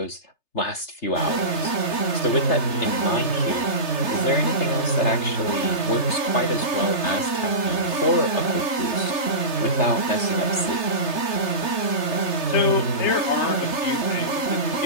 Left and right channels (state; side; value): late; right; 3.3 ms